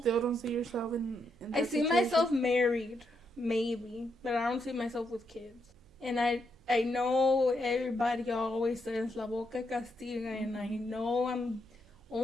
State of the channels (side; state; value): right; noise; hum, 29 dB below the sound